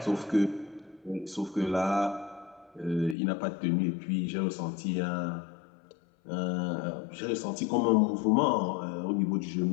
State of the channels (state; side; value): drops out; right; at 3.2 s